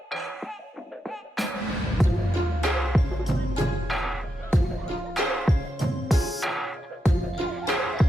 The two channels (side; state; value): both; normal; correlation 0.85